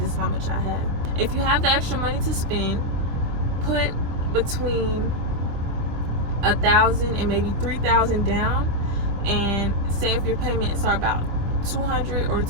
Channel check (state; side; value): late; left; 25 ms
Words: is how much I have. If you have the extra money to spend, put between $1,000 and maybe $3,000 down, and say if your payments are about $200 or